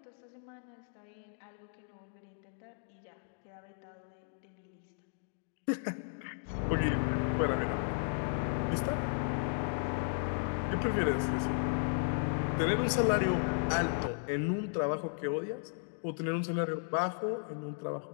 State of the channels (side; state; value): right; silent; digital silence